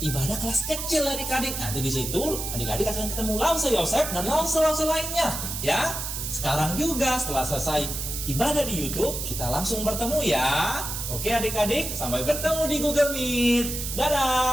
ibadah kelas kecil adik-adik. Nanti di situ adik-adik akan ketemu lause Yosef dan lause-lause lainnya. Ya, sekarang juga setelah selesai ibadah di YouTube, kita langsung bertemu ya. Oke adik-adik, sampai bertemu di Google Meet.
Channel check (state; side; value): noise; right; hiss, 5 dB below the sound